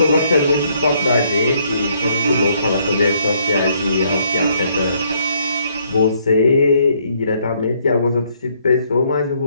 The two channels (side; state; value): both; inverted; correlation -0.69